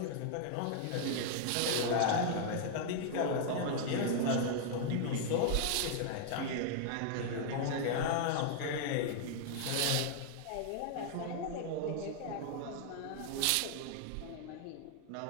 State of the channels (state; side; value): different; both; correlation -0.01